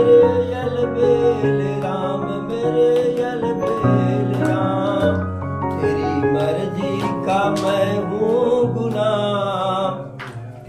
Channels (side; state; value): both; identical; correlation 1.00